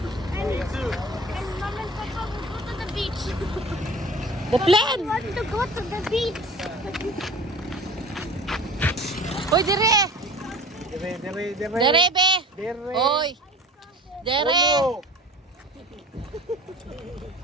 And Mom and Papa will go to the beach. The plan! We want to go to the beach. Uy, dire! Dire. Dire, be! Dire. Uy! Dire! Uno.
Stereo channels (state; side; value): normal; both; correlation 0.41